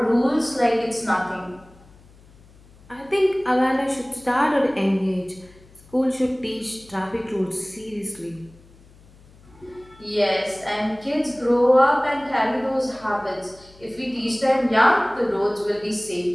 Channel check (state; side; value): noise; left; hum, 26 dB below the sound